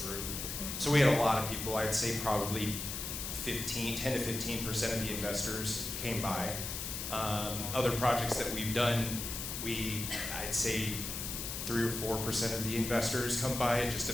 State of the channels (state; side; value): noise; left; hiss, 5 dB below the sound